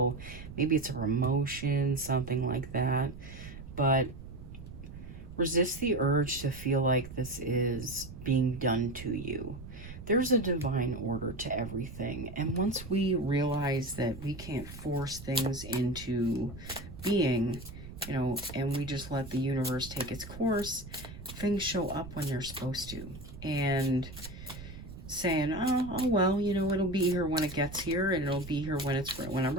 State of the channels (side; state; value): right; noise; rumble, 13 dB below the sound